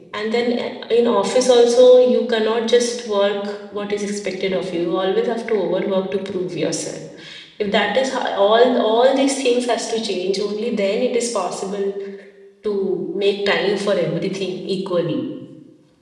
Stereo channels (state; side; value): identical; both; correlation 1.00